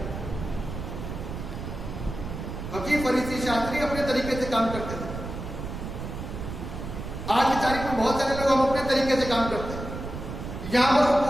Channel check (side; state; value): right; noise; rumble, 7 dB below the sound